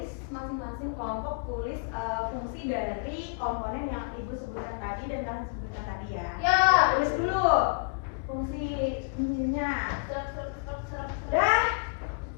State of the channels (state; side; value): quieter; right; 35.6 dB